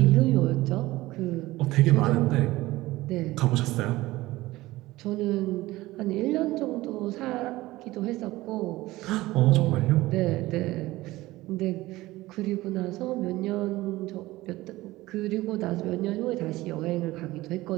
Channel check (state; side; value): quieter; left; 18.3 dB